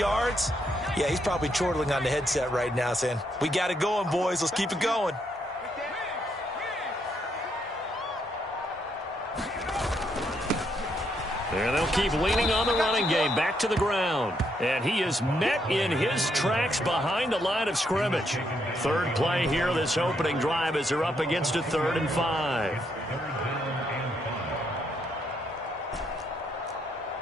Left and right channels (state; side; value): normal; both; correlation 0.76